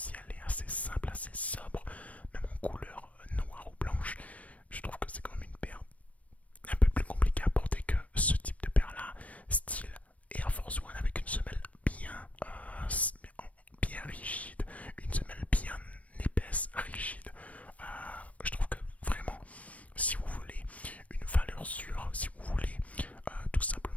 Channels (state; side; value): late; right; 0.067 ms